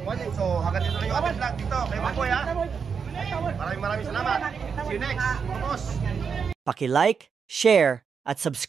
So, hanggang dito na yung ating vlog dito. Kay Mamboy ha. Maraming salamat. See you next. Mga boss. Paki-like, share, at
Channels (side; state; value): left; quieter; 6.2 dB